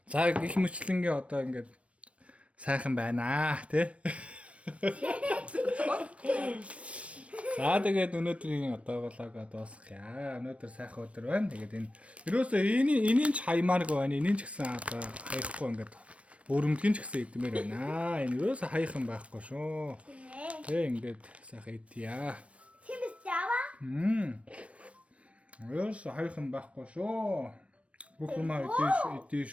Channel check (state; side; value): late; left; 0.063 ms